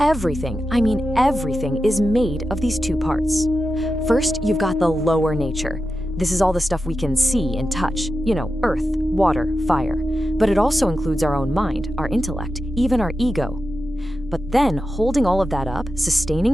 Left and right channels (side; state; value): both; normal; correlation 0.91